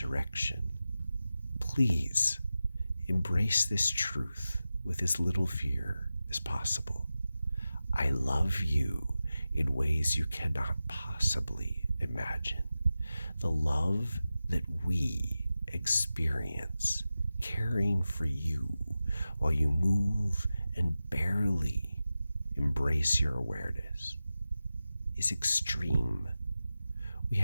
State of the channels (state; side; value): inverted; both; correlation -0.93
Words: Please embrace this truth with as little fear as possible. I love you in ways you cannot possibly imagine. The love that we experience caring for you while you move and barely embrace your awareness is extreme. We